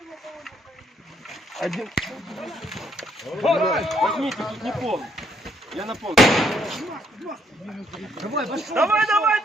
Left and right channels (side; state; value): both; normal; correlation 0.70